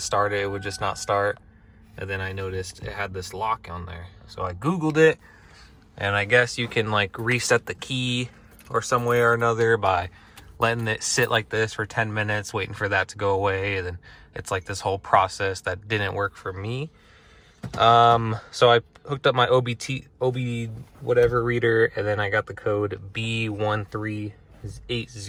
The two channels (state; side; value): identical; both; correlation 1.00